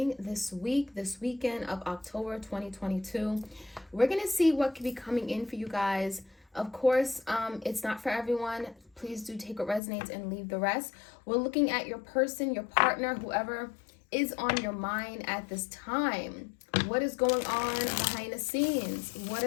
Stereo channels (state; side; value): drops out; right; at 9.8 s